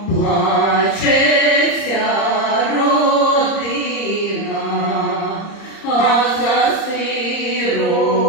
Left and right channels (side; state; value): right; late; 30 ms